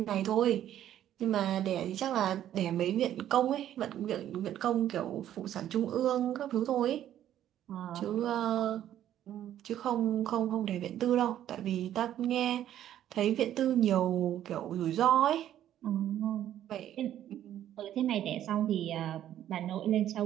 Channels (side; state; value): left; quieter; 11.5 dB